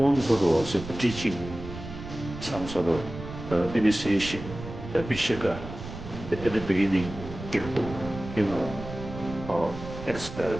guru was teaching some sort of initiation, the Vishaka at the beginning, you know, expel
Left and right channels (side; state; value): right; noise; rumble, 11 dB below the sound